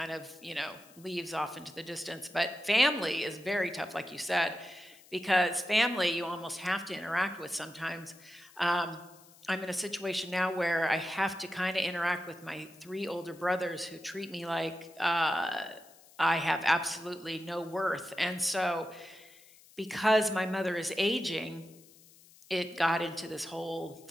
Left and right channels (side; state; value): left; noise; hiss, 24 dB below the sound